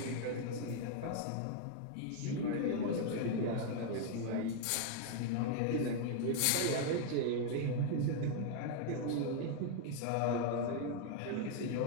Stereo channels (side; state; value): both; different; correlation 0.00